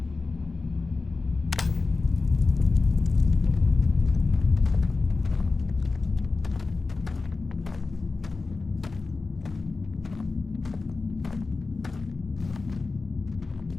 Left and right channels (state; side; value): quieter; right; 3.9 dB